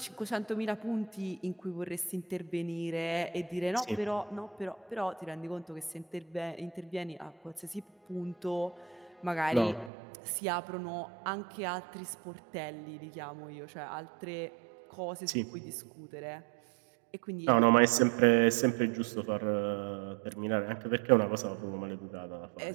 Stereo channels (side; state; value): left; drops out; at 9.9 s